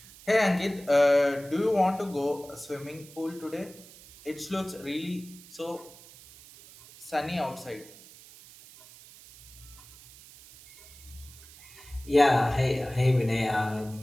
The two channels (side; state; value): right; noise; hiss, 20 dB below the sound